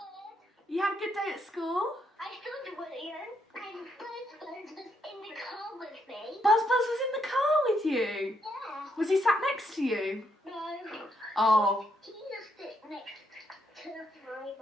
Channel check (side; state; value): both; normal; correlation 0.76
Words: You had a good day at school? I still do William, and Buzz was in the car with me. Buzz was in the car with you? Yeah. Was he sat next to you? No. Oh. He just sit next to the frame